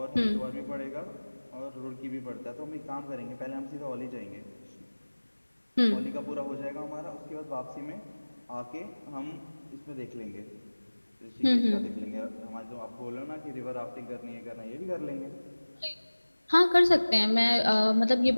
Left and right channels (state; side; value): inverted; both; correlation -1.00